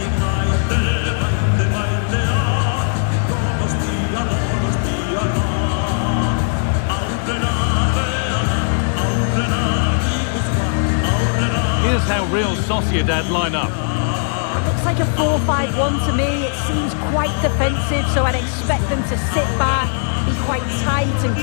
Here's how Real Sociedad line up. It looks like a 4-5-1 to me. It seems quite defensive, so I'd expect them to sit back, be quite tight and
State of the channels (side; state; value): right; silent; digital silence